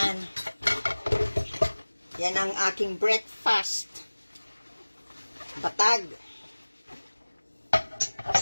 Yan ang aking breakfast. Batag.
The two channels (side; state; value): both; inverted; correlation -1.00